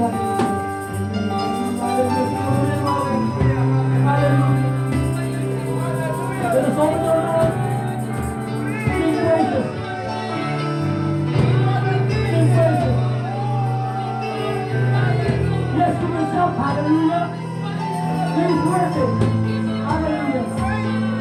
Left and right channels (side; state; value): both; identical; correlation 1.00